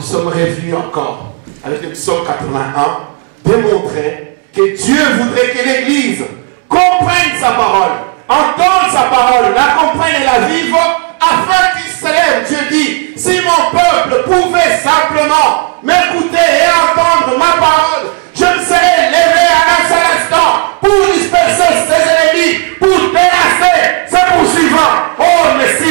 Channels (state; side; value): quieter; left; 30.7 dB